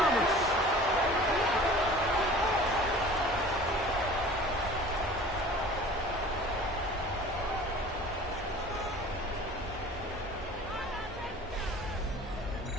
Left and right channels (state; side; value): normal; both; correlation 0.43